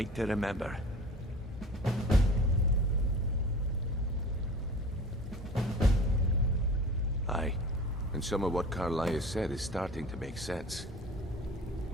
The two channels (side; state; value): both; normal; correlation 0.40